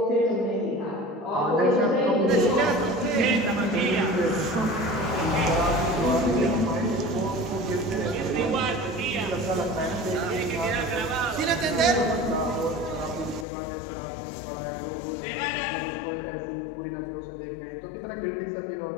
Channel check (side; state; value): right; drops out; at 13.5 s